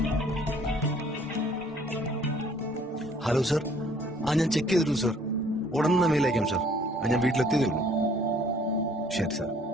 Hello sir. ഞാൻ ചെക്ക് ചെയ്തിരുന്നു സർ. ഉടനെ മെയിൽ അയക്കാം സർ. ഞാൻ വീട്ടിലെത്തിയതേ ഉള്ളൂ. ശരി സർ.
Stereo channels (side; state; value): both; normal; correlation 0.58